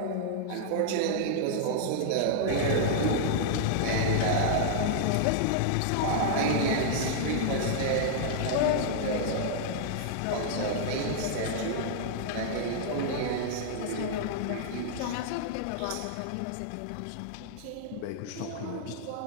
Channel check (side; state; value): both; different; correlation -0.01